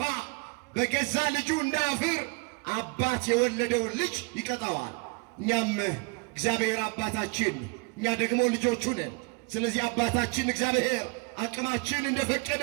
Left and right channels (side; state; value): left; quieter; 30.2 dB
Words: በገዛ ልጁ እንዳያፍር አባት የወለደውን ልጅ ይቀጣዋል። እኛም እግዚአብሔር አባታችን፣ እኛ ደግሞ ልጆቹ ነን። ስለዚህ አባታችን እግዚአብሔር አቅማችን እንደፈቀደ